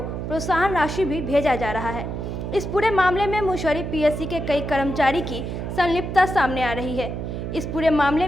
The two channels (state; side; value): noise; right; hum, 5 dB below the sound